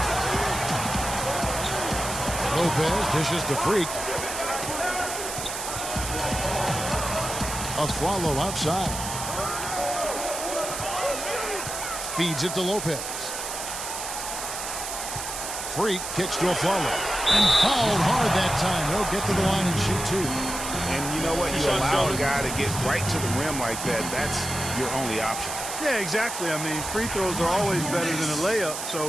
Lopez dishes to Freak. A follow outside. Feeds it to Lopez. Freak kicks to a follow. And fouled hard that time. He'll get to the line and shoot 2. And you know what? You allow a guy to get right to the rim like that. That's your only option. Yeah, exactly. I mean, free throws are always better than a layup,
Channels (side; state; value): right; noise; hiss, 6 dB below the sound